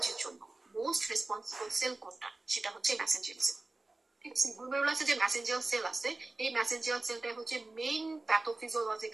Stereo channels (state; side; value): quieter; left; 3.1 dB